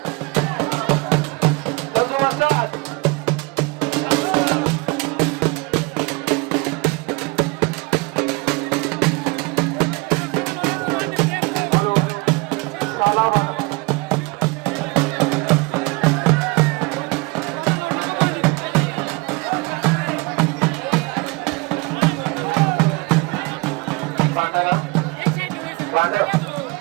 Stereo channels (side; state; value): left; quieter; 26.2 dB